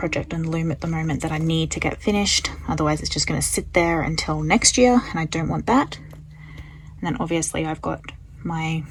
on the loom at the moment that I need to get finished. Otherwise it's just going to sit there until next year, and I don't want that. And then obviously I've got my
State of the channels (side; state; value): both; identical; correlation 1.00